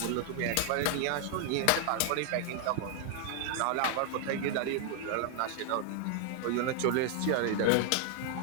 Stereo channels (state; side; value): different; both; correlation 0.00